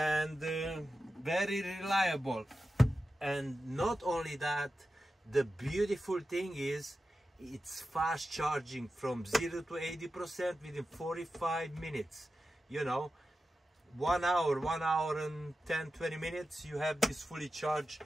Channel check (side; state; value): both; normal; correlation 0.92